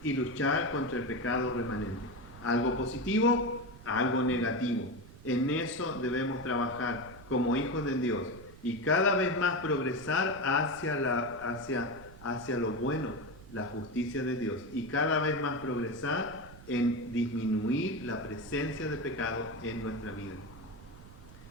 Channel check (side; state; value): right; noise; rumble, 18 dB below the sound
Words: y luchar contra el pecado remanente. Algo positivo, algo negativo. En eso debemos trabajar como hijos de Dios y cada vez más progresar hacia lo bueno, la justicia de Dios, y cada vez más progresar en disminuir la presencia de pecado en nuestra vida.